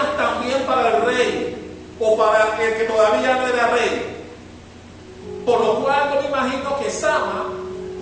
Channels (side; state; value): both; identical; correlation 1.00